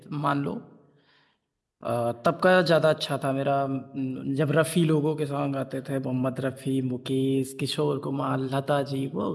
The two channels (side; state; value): both; identical; correlation 1.00